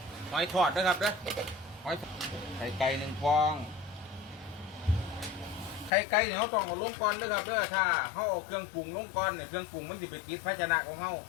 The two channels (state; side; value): drops out; right; at 5.9 s